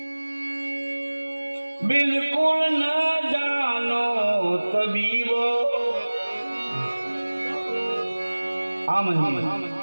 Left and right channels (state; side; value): inverted; both; correlation -1.00